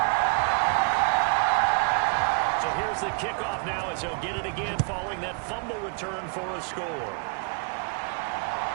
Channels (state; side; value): quieter; left; 38.8 dB